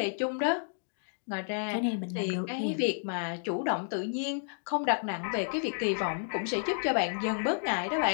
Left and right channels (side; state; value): right; silent; digital silence